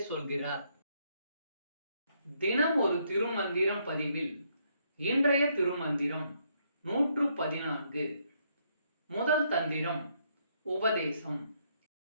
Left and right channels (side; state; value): both; inverted; correlation -0.73